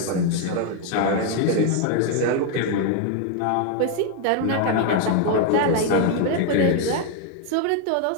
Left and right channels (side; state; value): both; different; correlation 0.01